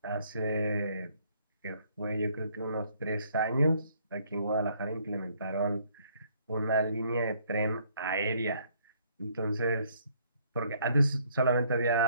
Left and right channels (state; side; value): inverted; both; correlation -0.65